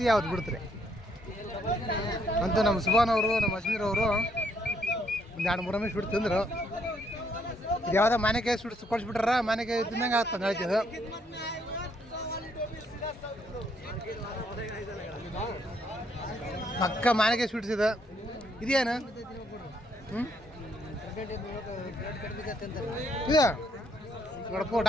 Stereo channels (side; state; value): both; normal; correlation 0.71